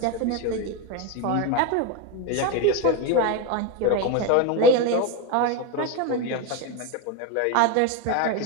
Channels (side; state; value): both; different; correlation 0.03